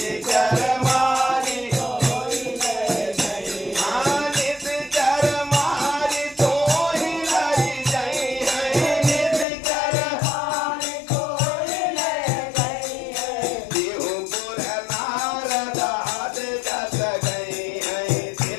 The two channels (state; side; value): drops out; right; at 9.5 s